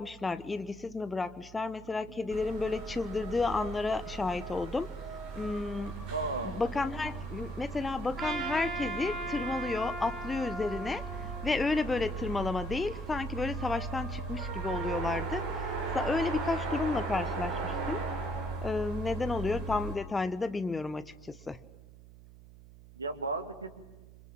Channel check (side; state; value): right; noise; hum, 19 dB below the sound